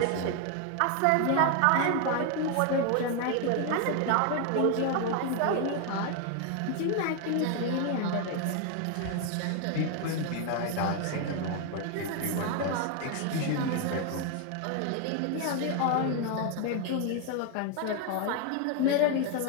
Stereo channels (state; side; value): different; both; correlation 0.01